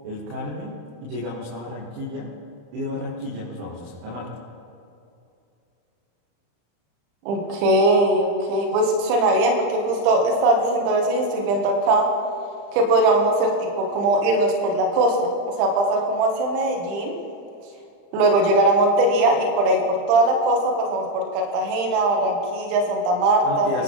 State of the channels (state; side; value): late; left; 35 ms